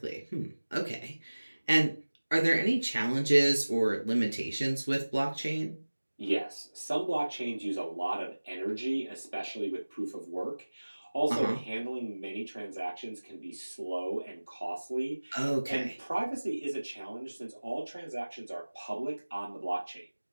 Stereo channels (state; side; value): inverted; both; correlation -1.00